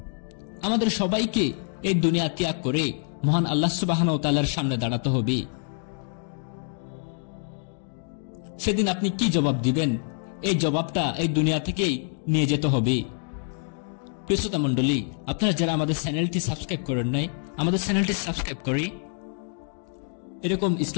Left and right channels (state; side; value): silent; right; 61 dB below the other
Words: আমাদের সবাইকে এই দুনিয়া ত্যাগ করে মহান আল্লাহ সুবহানাহু ওয়া তাআলার সামনে দাঁড়াতে হবে। সেদিন আপনি কি জবাব দিবেন, এই জবাবটা এই দুনিয়া থেকেই নিয়ে যেতে হবে। প্রিয় শ্রোতা মণ্ডলী, আপনারা যারা আমাদের চ্যানেলটি সাবস্ক্রাইব করেন নাই, আমাদের চ্যানেলটি সাবস্ক্রাইব করে এরকম